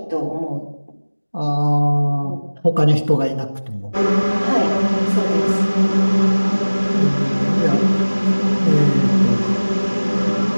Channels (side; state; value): both; inverted; correlation -1.00